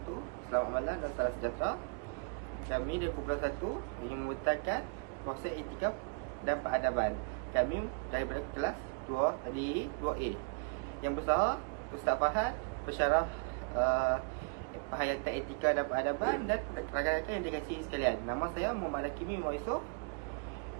Selamat malam dan salam sejahtera. Kami dari Kumpulan 1 ingin memutakan konsep etika dan peradaban. Kami daripada kelas 2 tadi 2A. Yang besar Ustaz Fahad pensyarah penghayatan etika dan peradaban, dan rakan-rakan yang dikasihi sekalian. Nama saya Muhammad Hakimi Yusof.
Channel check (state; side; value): quieter; left; 36.0 dB